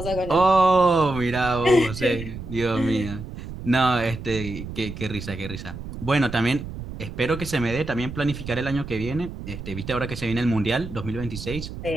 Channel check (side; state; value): right; noise; rumble, 10 dB below the sound